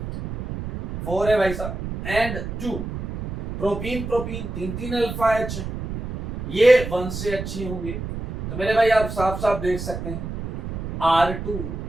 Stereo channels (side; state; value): right; noise; rumble, 7 dB below the sound